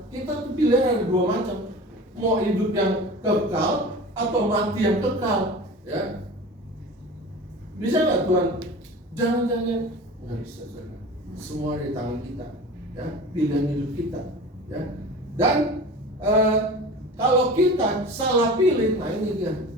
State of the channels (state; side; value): normal; both; correlation 0.36